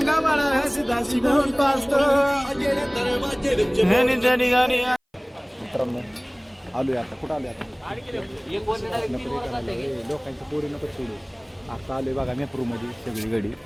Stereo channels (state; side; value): identical; both; correlation 1.00